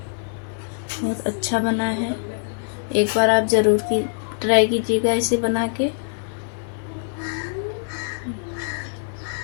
बहुत अच्छा बना है। एक बार आप ज़रूर ट्राई कीजिएगा इसे बना के।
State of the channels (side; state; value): right; silent; digital silence